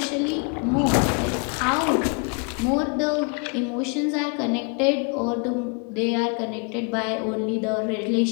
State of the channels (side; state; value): right; quieter; 37.3 dB